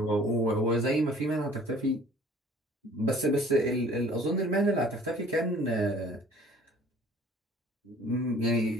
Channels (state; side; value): normal; both; correlation 0.51